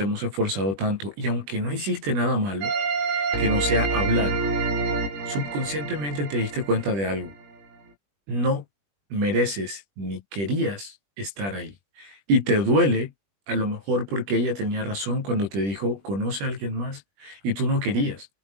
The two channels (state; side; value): late; left; 20 ms